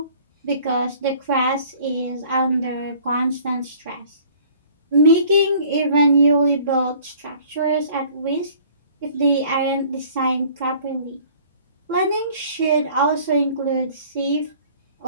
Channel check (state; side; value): inverted; both; correlation -0.52